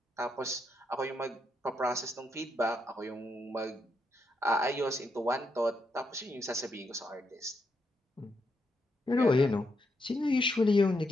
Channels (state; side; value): normal; both; correlation 0.80